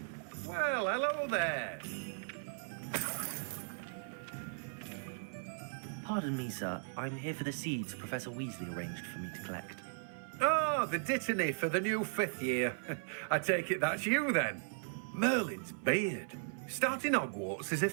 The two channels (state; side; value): silent; left; 53 dB below the other